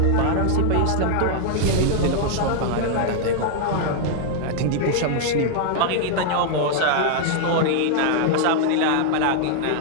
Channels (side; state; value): both; different; correlation 0.00